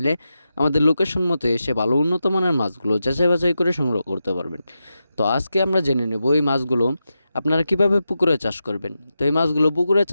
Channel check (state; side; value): inverted; both; correlation -0.89